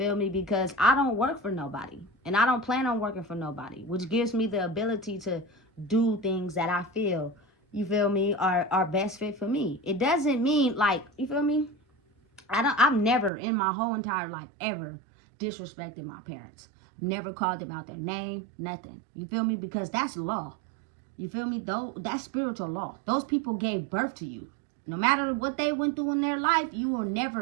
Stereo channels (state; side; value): drops out; left; at 13.3 s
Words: me? Because I don't work for nobody. And I don't plan on working for nobody. Which gives me the ability to do things that I feel, you feel me, are best fit for me. It doesn't mean, like, you feel me? I've never in my whole entire life ever disrespected my parents. Never called them out their name, nothing. You feel me? Because that's law. You feel me? Though that's spiritual law. Those people gave birth to you. No matter what they went through in their life, you were